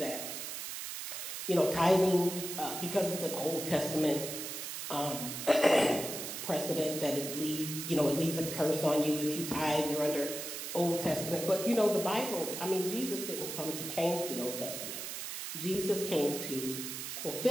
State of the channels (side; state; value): right; noise; hiss, 6 dB below the sound